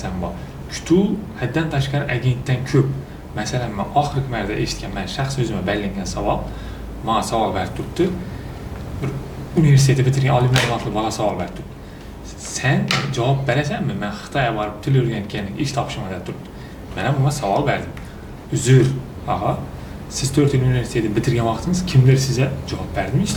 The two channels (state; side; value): identical; both; correlation 1.00